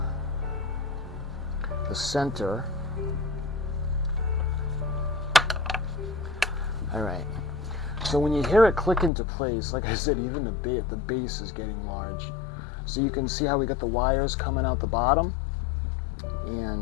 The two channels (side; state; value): right; drops out; at 9.1 s